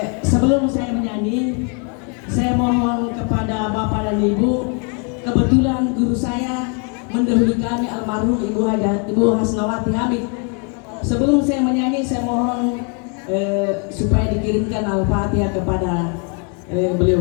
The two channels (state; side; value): quieter; right; 37.8 dB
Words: Sebelum saya menyanyi, saya mohon kepada Bapak dan Ibu, kebetulan guru saya mendahului kami almarhum Ibu Hasnawati Hamid. Sebelum saya menyanyi, saya mohon supaya dikirimkan Al-Fatihah kepada